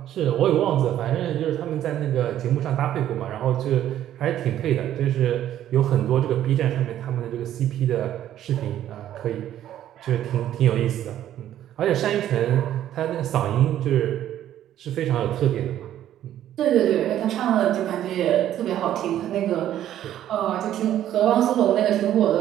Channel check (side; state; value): left; quieter; 11.7 dB